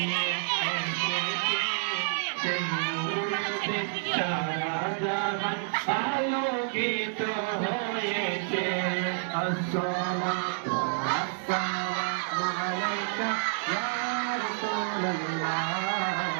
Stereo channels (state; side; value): silent; left; digital silence